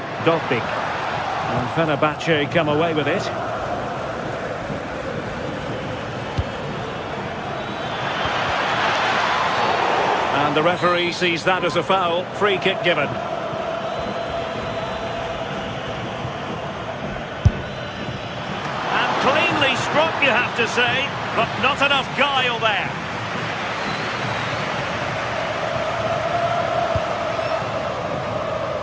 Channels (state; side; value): identical; both; correlation 1.00